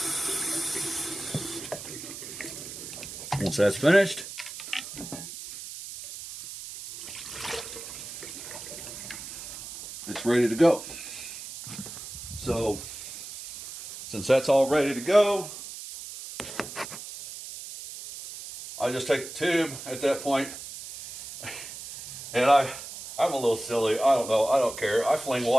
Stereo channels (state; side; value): noise; right; hiss, 11 dB below the sound